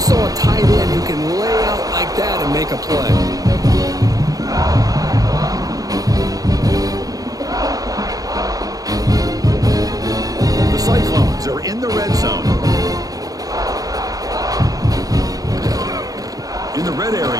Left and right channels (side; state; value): left; late; 0.18 ms